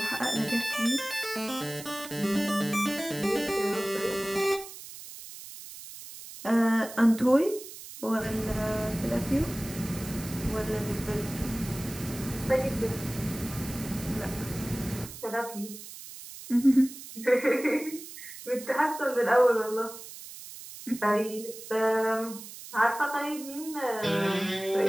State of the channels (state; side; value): noise; right; hiss, 13 dB below the sound